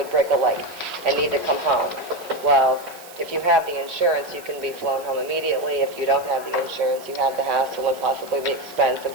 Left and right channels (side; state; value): right; noise; hiss, 19 dB below the sound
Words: break a leg and need to come home, well, if you have the insurance, you can be flown home immediately. If you don't have the insurance, you have the hassle and possibly the expense of